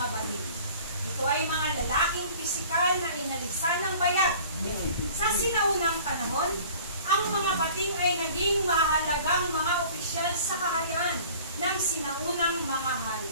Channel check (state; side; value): inverted; both; correlation -0.48